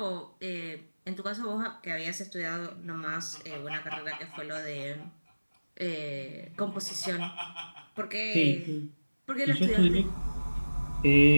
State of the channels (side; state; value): both; inverted; correlation -1.00